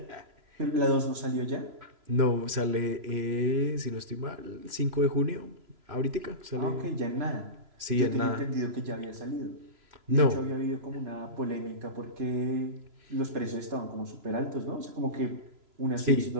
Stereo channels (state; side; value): late; left; 3.0 ms